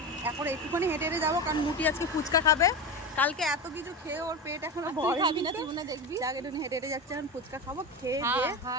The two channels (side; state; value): both; normal; correlation 0.21